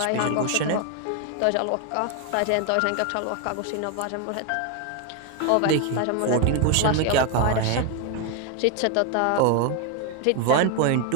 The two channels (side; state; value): both; different; correlation 0.01